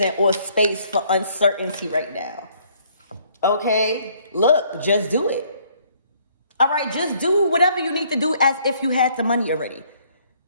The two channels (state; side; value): inverted; both; correlation -0.64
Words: or space for uncertainty right now. Okay? Look, just do it. All right, just do whatever you need to do as if you had the money already.